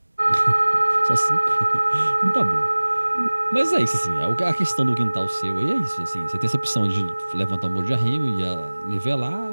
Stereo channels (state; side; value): inverted; both; correlation -1.00